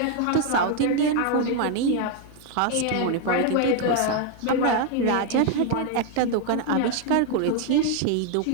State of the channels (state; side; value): different; both; correlation 0.01